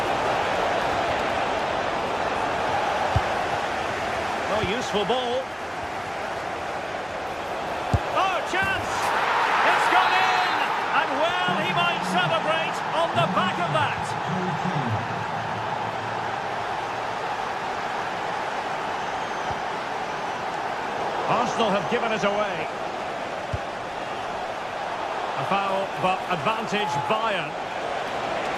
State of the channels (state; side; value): identical; both; correlation 1.00